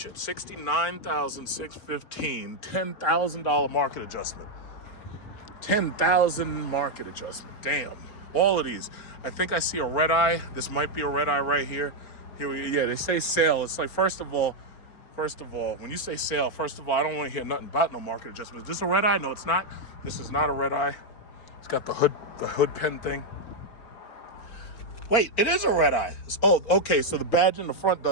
$69,615. $10,000 market adjustment. $10,000 market adjustment. Damn. All of these. I think I see a red eye. This might be a red eye right here. Yeah, they say sale. It's like, first of all, when you say sale, I don't want to hear nothing about no market adjustment. Is this a red eye? No, it's not. This is not a red eye. It's got the hood pen thing. Wait, it is a red eye. Okay, so the badge in the front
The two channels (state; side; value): late; right; 4.4 ms